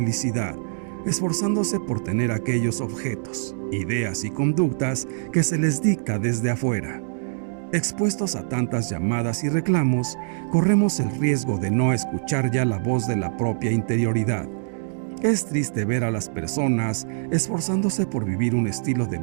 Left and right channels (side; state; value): left; silent; digital silence